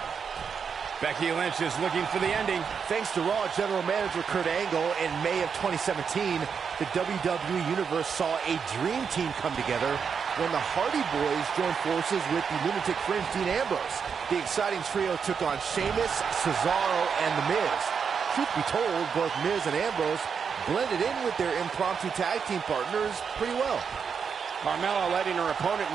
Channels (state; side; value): quieter; left; 6.4 dB